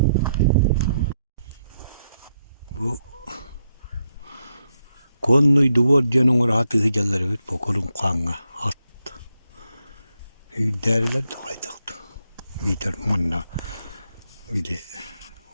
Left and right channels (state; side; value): inverted; both; correlation -0.81